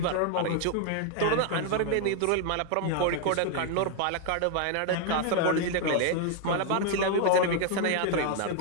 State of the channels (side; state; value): both; different; correlation 0.01